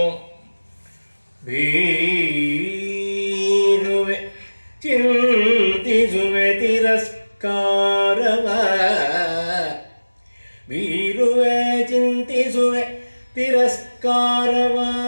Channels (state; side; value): inverted; both; correlation -1.00